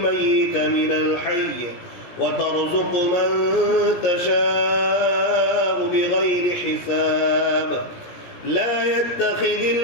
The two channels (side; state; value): right; late; 17 ms